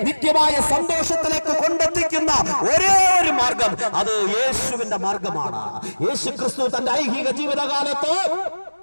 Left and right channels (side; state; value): both; inverted; correlation -1.00